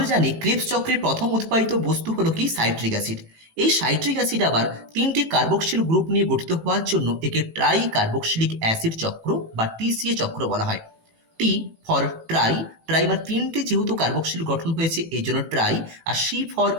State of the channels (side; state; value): left; late; 18 ms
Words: জানি ক্রেবস চক্রের প্রথম উৎপাদিত বস্তু হলো কি? Citric acid. এই সাইট্রিক অ্যাসিড আবার তিনটি কার্বক্সিল গ্রুপ নিয়ে গঠিত হওয়ার জন্য একে ট্রাই কার্বক্সিলিক অ্যাসিড চক্র বা টিসিএ চক্র বলা হয়। টি ফর ট্রাইমার তিনটে যেহেতু কার্বক্সিল গঠন হয়েছে এই জন্য ট্রাই, আর সি ফর